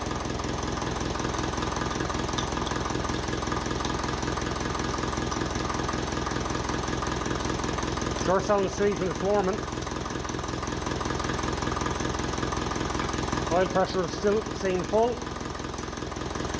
Sure sounds sweet when it's warming. Oil pressure is still staying full.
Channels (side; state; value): both; identical; correlation 1.00